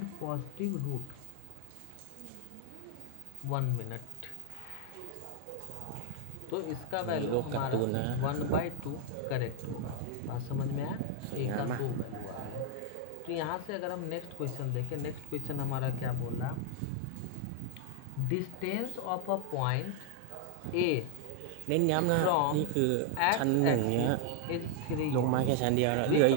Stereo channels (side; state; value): both; different; correlation 0.00